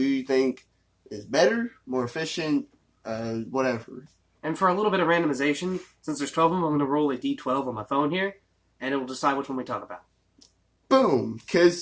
think is better, more efficient, whatever. And for a little bit of randomization, since there's 12 of them, I'm going to roll a d12 on my phone here, and it will decide which one we talk about. Boom!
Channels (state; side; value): identical; both; correlation 1.00